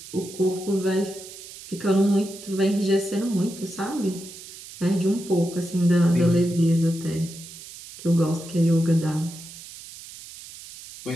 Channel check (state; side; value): noise; right; hiss, 15 dB below the sound